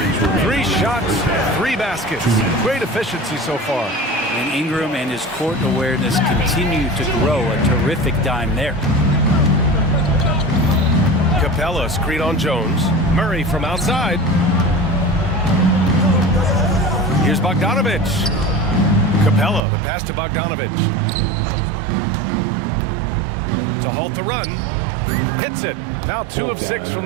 shots, 3 baskets. Great efficiency so far. And Ingram and his court awareness continue to grow. A terrific dime there. Capella, screen on Jones. Murray from outside. Here's Bogdanovic. Capella, the pass to Bogdanovic. To halt the run. Hits it. Now 2 of 6 from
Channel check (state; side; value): drops out; left; at 19.6 s